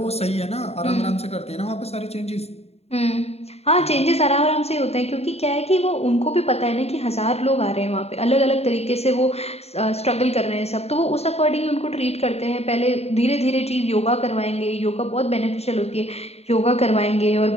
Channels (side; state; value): right; late; 0.30 ms